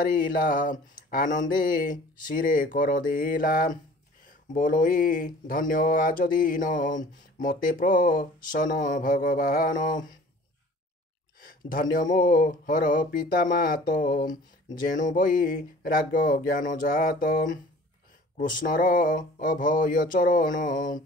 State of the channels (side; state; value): both; normal; correlation 0.47